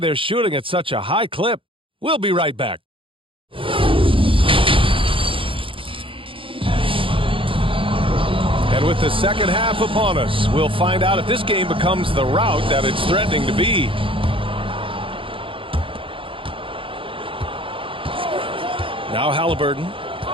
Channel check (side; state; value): left; late; 0.25 ms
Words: shooting at such a high clip. We'll be right back. And with the second half upon us, we'll find out if this game becomes the rout that it's threatening to be. Now Halliburton,